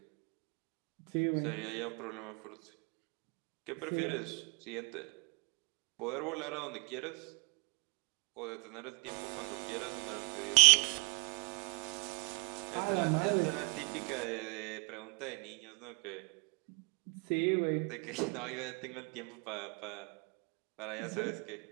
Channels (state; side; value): quieter; left; 35.2 dB